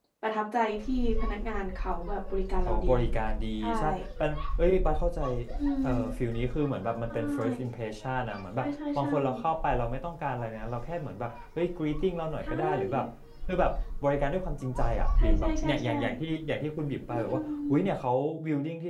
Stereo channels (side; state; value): both; identical; correlation 1.00